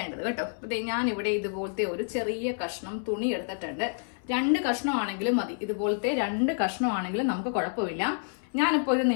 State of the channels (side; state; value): right; silent; 59 dB below the other